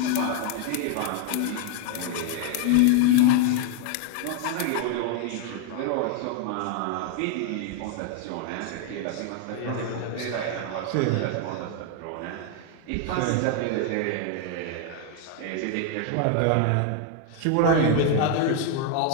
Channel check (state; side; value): different; both; correlation 0.00